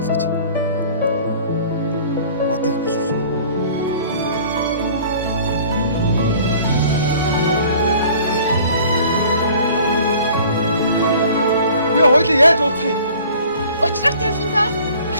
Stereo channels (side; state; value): both; inverted; correlation -0.49